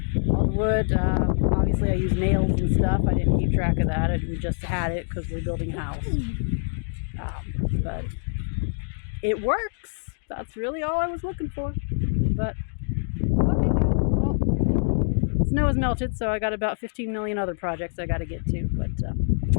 all the wood. Obviously, I used nails and stuff. I didn't keep track of that. We just had it because we're building a house. But it works. That's really all I was looking for. But okay, guys. Well, snow has melted, so I got about 15 million other projects I got to get to. But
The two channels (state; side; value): silent; right; digital silence